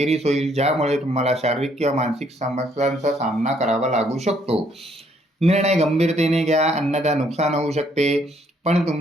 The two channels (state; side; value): normal; both; correlation 0.68